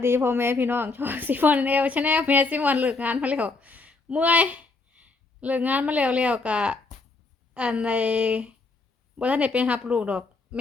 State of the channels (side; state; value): right; quieter; 3.8 dB